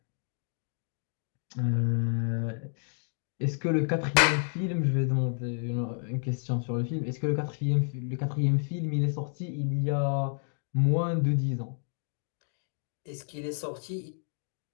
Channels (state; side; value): silent; right; 57 dB below the other